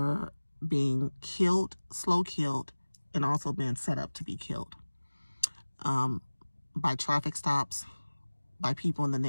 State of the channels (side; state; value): both; inverted; correlation -1.00